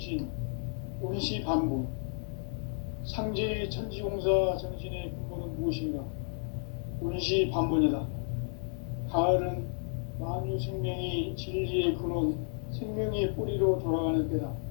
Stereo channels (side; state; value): right; silent; digital silence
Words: 운시반본, 상제의 천지공사 정신의 근본은 무엇인가? 운시반본이다. 가을은 만유 생명이 진리의 근원, 생명의 뿌리로 돌아가는 때다.